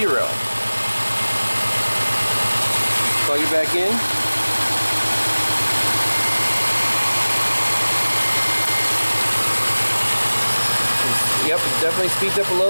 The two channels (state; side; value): inverted; both; correlation -1.00